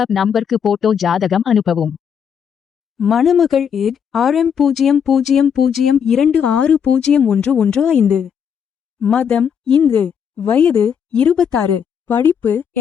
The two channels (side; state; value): right; quieter; 7.6 dB